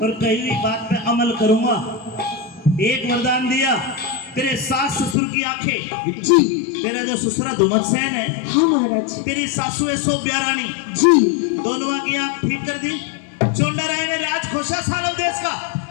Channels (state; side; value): drops out; right; at 5.2 s